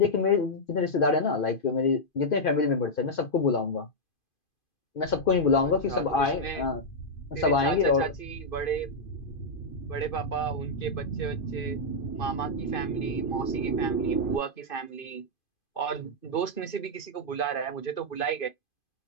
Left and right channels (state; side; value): late; right; 2.5 ms